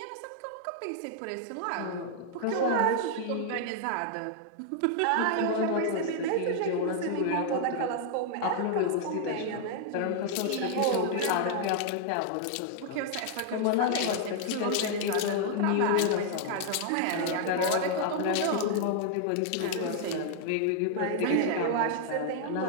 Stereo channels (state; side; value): different; both; correlation 0.00